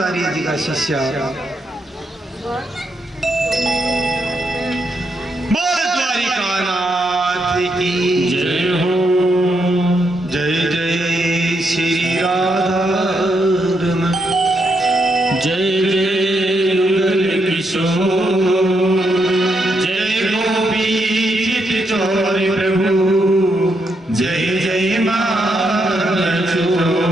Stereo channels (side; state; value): both; normal; correlation 0.79